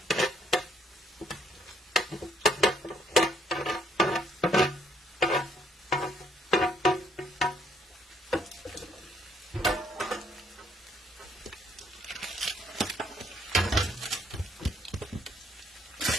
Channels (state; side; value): normal; both; correlation 0.68